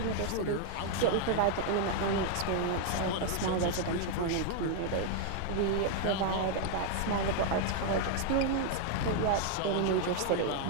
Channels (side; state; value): both; different; correlation 0.00